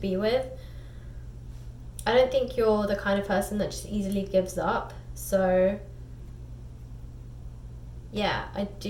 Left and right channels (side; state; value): both; identical; correlation 1.00